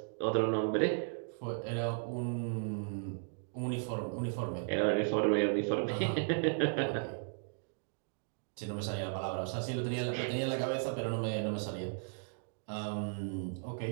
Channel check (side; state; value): left; silent; digital silence